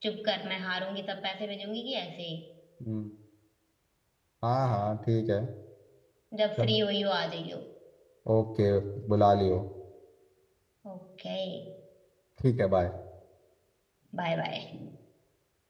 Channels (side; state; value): both; identical; correlation 1.00